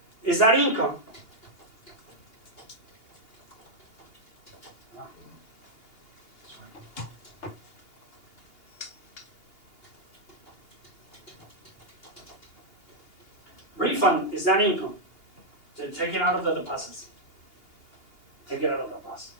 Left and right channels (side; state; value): right; late; 2.8 ms